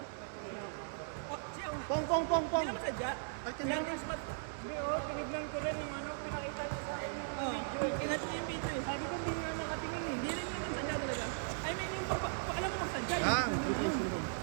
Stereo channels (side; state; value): left; silent; 53 dB below the other